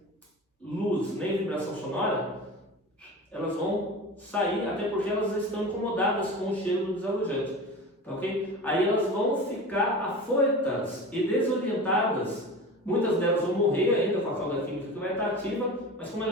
luz nem vibração sonora, elas vão sair, até porque elas estão incomodadas com o cheiro do desalojante. Tá, ok? Aí elas vão ficar afoitas e desorientadas. Muitas delas vão morrer ainda com a cauda química que vai estar ativa, mas como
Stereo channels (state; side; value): normal; both; correlation 0.32